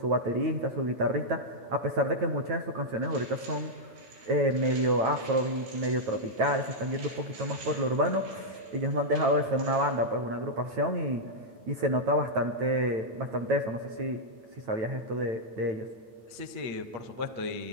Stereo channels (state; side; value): late; left; 9.1 ms